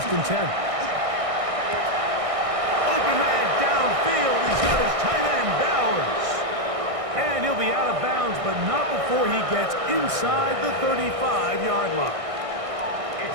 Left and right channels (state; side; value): late; left; 1.6 ms